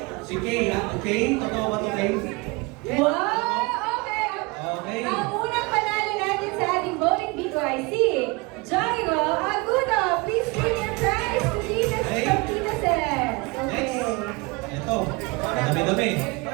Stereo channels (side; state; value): left; quieter; 26.4 dB